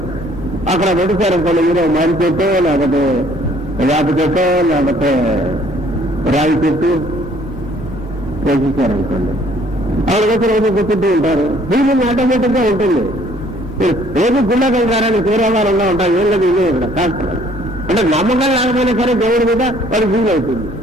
అక్కడ పెట్టేశారు అనుకోండి, మీరు మారి చెట్టు, లేకపోతే వేప చెట్టు, లేకపోతే రాగి చెట్టు వేసేసారనుకోండి, అక్కడికొచ్చి రోజు కూర్చుంటూ ఉంటారు. ఫీలింగ్ ఆటోమేటిక్ గా ఉంటుంది. రోజు గుళ్ళకి వెళ్తారని తీరావాలంగా ఉంటారు. ఏం లేదు, ఇదే ఇక్కడ కాదు. అంటే నమ్మకం లేకపోయినా సరే దేవుడి మీద వాడు ఫీల్ అవుతుంది.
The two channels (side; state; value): both; normal; correlation 0.60